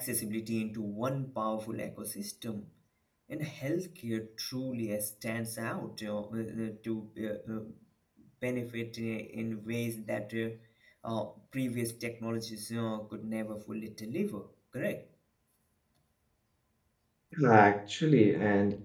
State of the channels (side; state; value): both; identical; correlation 1.00